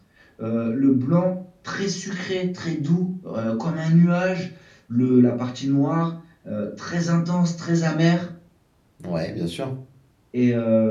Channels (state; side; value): identical; both; correlation 1.00